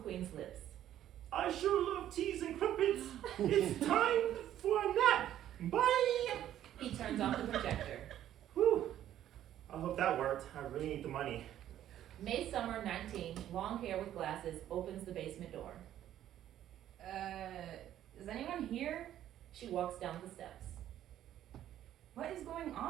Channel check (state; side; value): quieter; left; 11.8 dB